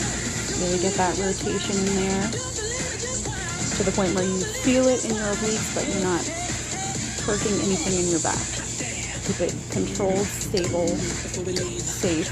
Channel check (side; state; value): both; identical; correlation 1.00